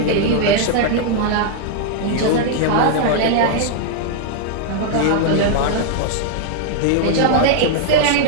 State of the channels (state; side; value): different; both; correlation -0.01